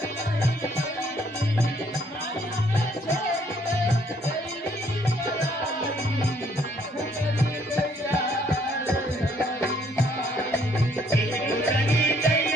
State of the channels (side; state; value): both; normal; correlation 0.66